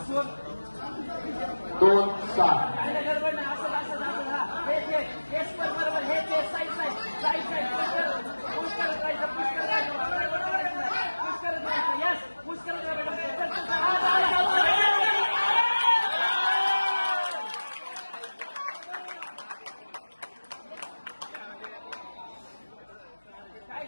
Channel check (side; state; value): both; inverted; correlation -1.00